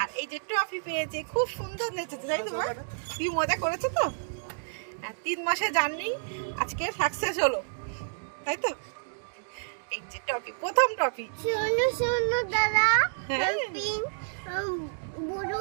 আর এই যে ট্রফি পেয়েছে। খুব সুন্দর নেচেছে তাই তো? কি মজা করেছে তো। 3 মাসে জার্নি আজকে সাকসেস হলো, তাই তো? এই যে ট্রফি, প্রথম ট্রফি। শোনো শোনো দাদা, হ্যাঁ পিঙ্ক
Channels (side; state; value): left; silent; digital silence